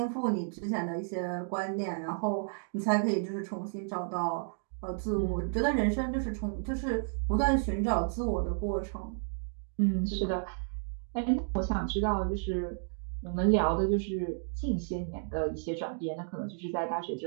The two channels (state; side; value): silent; left; digital silence